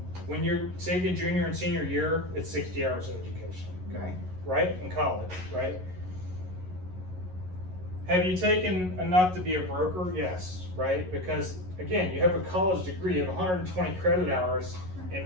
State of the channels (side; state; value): left; late; 11 ms